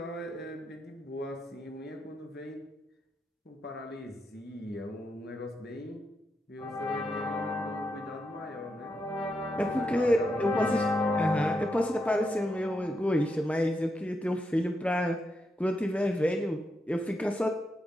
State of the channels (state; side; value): normal; both; correlation 0.83